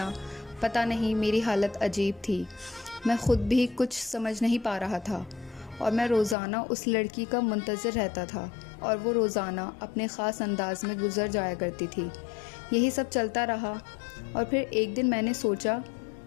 پتہ نہیں، میری حالت عجیب تھی۔ میں خود بھی کچھ سمجھ نہیں پا رہا تھا، اور میں روزانہ اس لڑکی کا منتظر رہتا تھا، اور وہ روزانہ اپنے خاص انداز میں گزر جایا کرتی تھی۔ یہی سب چلتا رہا، اور پھر ایک دن میں نے سوچا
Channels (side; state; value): right; drops out; at 6.4 s